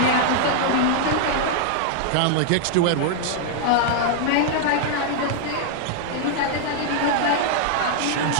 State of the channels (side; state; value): both; different; correlation 0.00